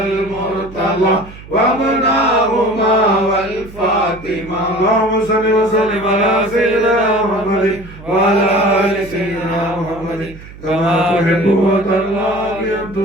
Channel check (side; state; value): right; noise; hum, 17 dB below the sound